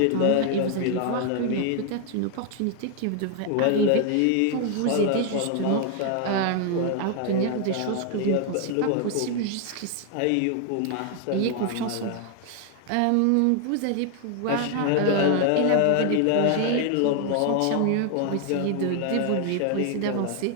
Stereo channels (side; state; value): both; different; correlation 0.00